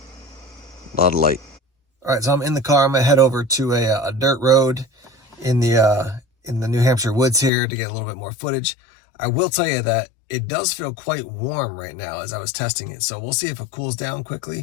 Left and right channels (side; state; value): right; drops out; at 7.5 s